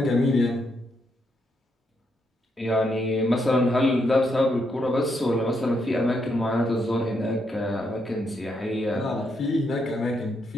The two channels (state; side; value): normal; both; correlation 0.78